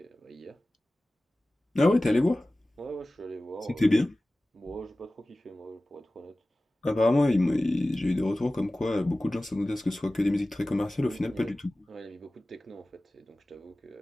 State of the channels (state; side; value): normal; both; correlation 0.97